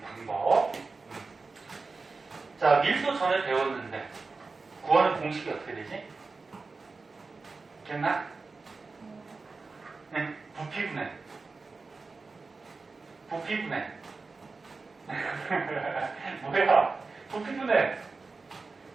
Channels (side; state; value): left; quieter; 4.1 dB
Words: 방법. 자, 밀도 전에 배웠는데 구하는 공식이 어떻게 되지? 기억나? 네, 부피분해. 부피분해. 뭐야? 부피분해.